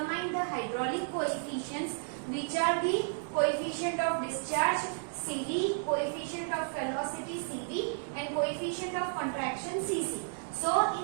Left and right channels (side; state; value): left; silent; digital silence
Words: the hydraulic coefficients, which are the coefficient of discharge CD, coefficient of velocity CV and coefficient of contraction CC. So